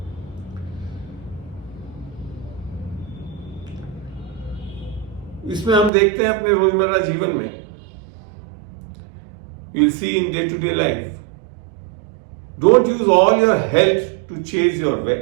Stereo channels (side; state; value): left; drops out; at 5.9 s